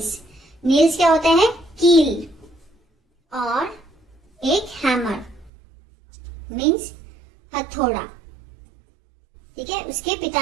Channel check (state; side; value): drops out; left; at 5.5 s